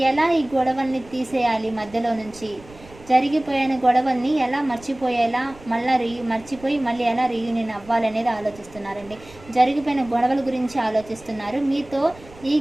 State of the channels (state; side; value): noise; right; rumble, 22 dB below the sound